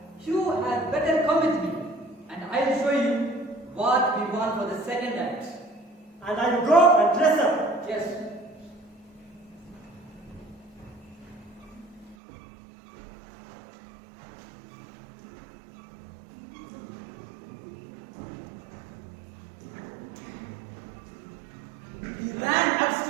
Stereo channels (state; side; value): drops out; left; at 12.2 s